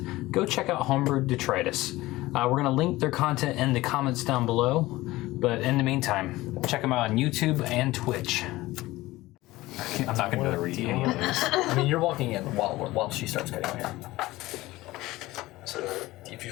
go check out Homebrew Detritus. We're going to link their content in the comments down below, but in the meantime, check them out on YouTube and Twitch. I'm not going to read any of those. I mean, you're walking in while she starts cutting my hair. So if you just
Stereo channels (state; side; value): quieter; right; 18.5 dB